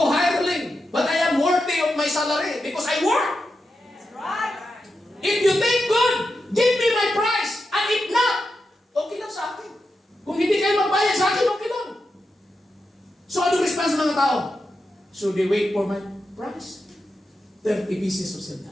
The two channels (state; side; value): normal; both; correlation 0.88